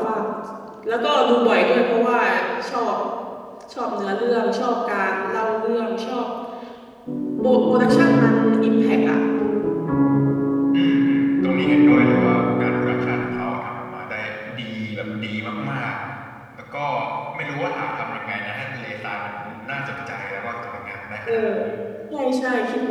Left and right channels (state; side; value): identical; both; correlation 1.00